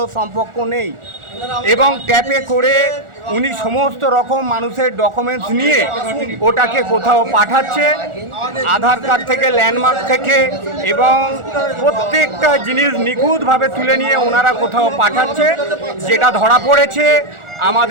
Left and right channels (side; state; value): left; late; 1.4 ms